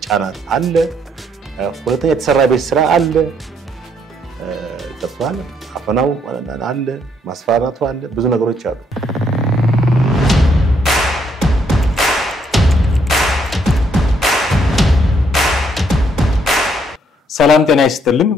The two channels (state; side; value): normal; both; correlation 0.71